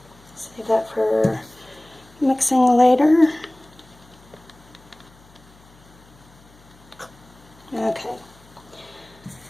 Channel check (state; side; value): noise; left; hum, 26 dB below the sound